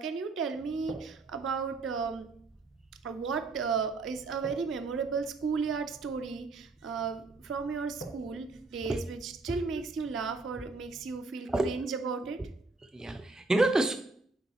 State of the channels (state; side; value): quieter; left; 3.7 dB